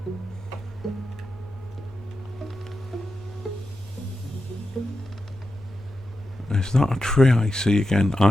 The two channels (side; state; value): both; normal; correlation 0.89